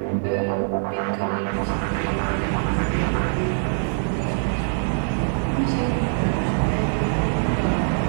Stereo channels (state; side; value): silent; left; 63 dB below the other